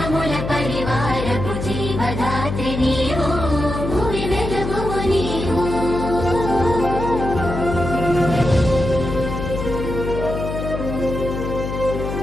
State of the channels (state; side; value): noise; left; hum, 5 dB below the sound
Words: పరివారపు జీవదాత్రి నీవు భూమి వెలుగువు నీవు